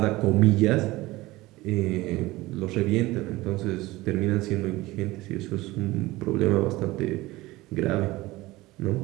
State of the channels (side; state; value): left; quieter; 19.3 dB